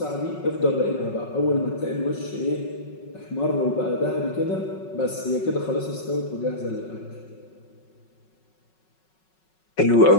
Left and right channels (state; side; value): late; right; 5.4 ms